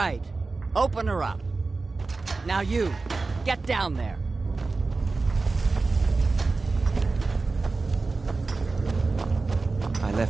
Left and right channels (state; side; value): quieter; left; 3.8 dB